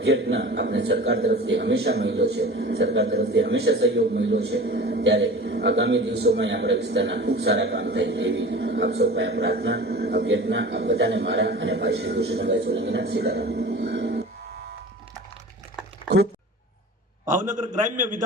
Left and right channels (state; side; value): normal; both; correlation 0.38